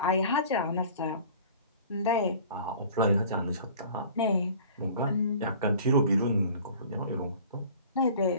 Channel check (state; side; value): inverted; both; correlation -0.46